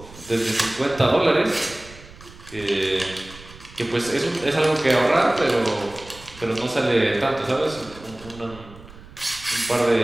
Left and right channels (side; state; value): right; noise; rumble, 19 dB below the sound